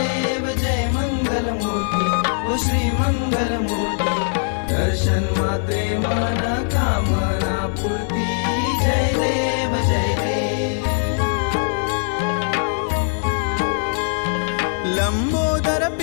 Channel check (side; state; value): right; silent; digital silence